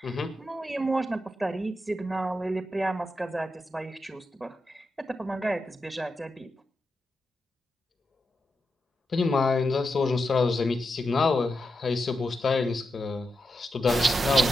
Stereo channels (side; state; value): both; normal; correlation 0.87